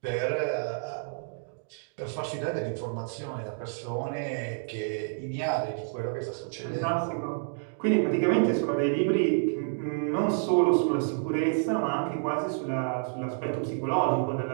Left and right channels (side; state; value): left; silent; digital silence